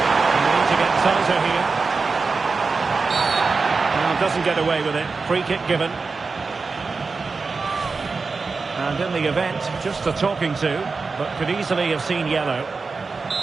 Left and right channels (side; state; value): left; quieter; 4.4 dB